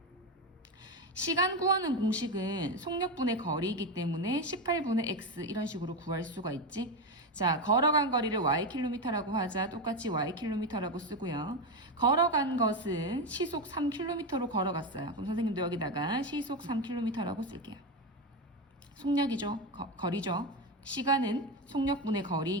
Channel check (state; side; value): normal; both; correlation 0.13